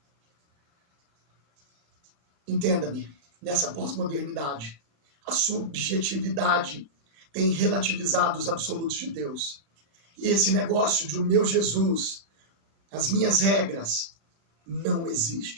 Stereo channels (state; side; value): late; left; 36 ms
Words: Entenda-me, nessa pós-modernidade, a subjetividade tem relativizado os absolutos de Deus. E esse negócio de o meu Jesus, as minhas regras, não